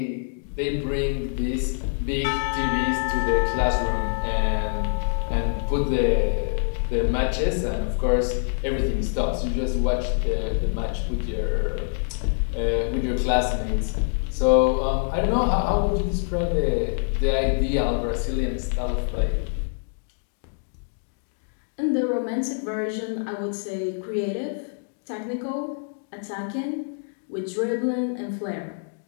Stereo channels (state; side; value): silent; right; digital silence